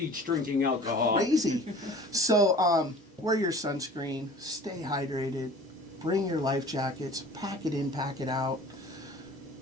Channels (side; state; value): both; normal; correlation 0.44